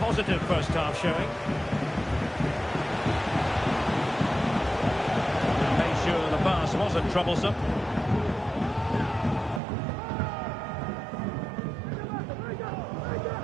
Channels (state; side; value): drops out; left; at 9.6 s